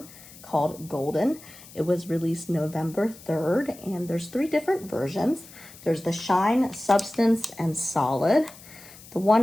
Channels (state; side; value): noise; left; hiss, 20 dB below the sound